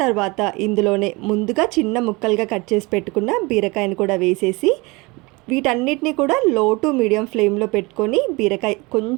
తర్వాత ఇందులోనే ముందుగా చిన్న ముక్కలుగా కట్ చేసి పెట్టుకున్న బీరకాయను కూడా వేసేసి వీటన్నిటిని కూడా లో టు మీడియం ఫ్లేమ్లో పెట్టుకొని బీరకాయ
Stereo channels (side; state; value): left; quieter; 25.1 dB